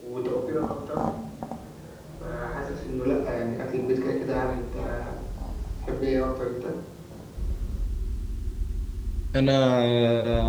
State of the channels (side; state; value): both; identical; correlation 1.00